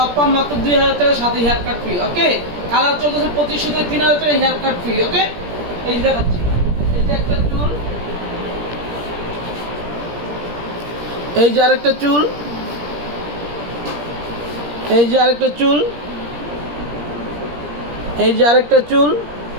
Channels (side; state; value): left; late; 17 ms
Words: পাম মাত্র 2000 টাকা, সাথে haircut free. Okay, colour চলতেছে 2500 থেকে 3000 টাকা হেয়ার কাট ফ্রি। ওকে, এই যে দেখাচ্ছি, এই যে একটা চুল, এই যে আরেকটা চুল, এই যে আরেকটা চুল, এই যে আরেকটা চুল,